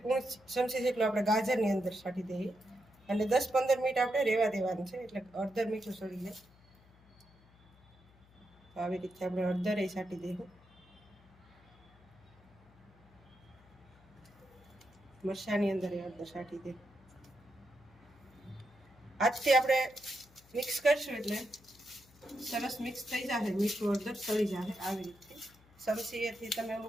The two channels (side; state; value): left; noise; hum, 27 dB below the sound